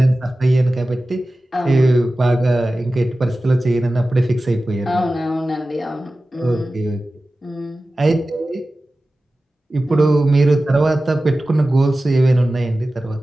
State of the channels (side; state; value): both; normal; correlation 0.95